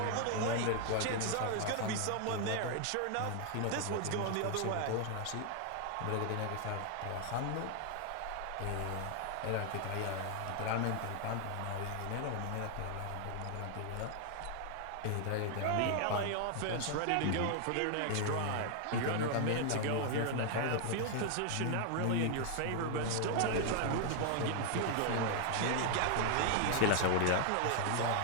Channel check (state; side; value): different; both; correlation 0.00